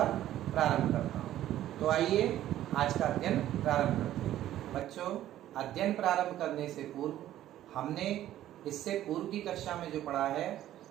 प्रारंभ करता हूँ। तो आइए आज का अध्ययन प्रारंभ करते हैं। बच्चों, अध्ययन प्रारंभ करने से पूर्व हमने इससे पूर्व की कक्षा में जो पढ़ा है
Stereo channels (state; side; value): quieter; left; 12.9 dB